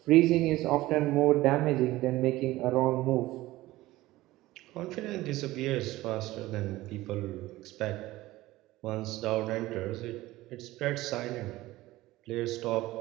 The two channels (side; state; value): left; quieter; 17.6 dB